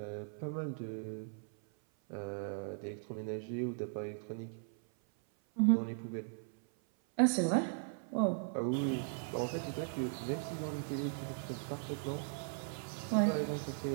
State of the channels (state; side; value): silent; left; 52 dB below the other